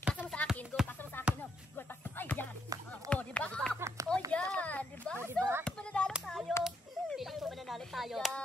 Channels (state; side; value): normal; both; correlation 0.76